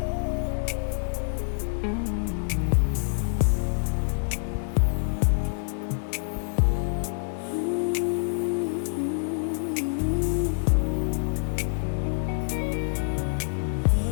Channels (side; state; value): right; silent; digital silence